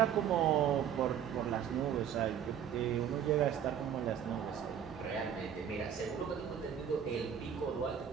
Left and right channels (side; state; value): left; quieter; 8.9 dB